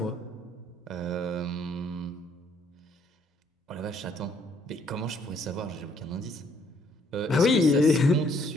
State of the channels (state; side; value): normal; both; correlation 0.66